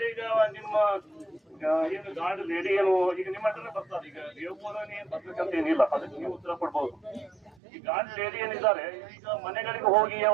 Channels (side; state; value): left; drops out; at 7.6 s